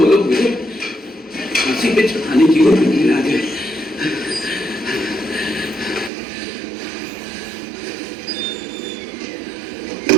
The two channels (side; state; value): left; drops out; at 6.1 s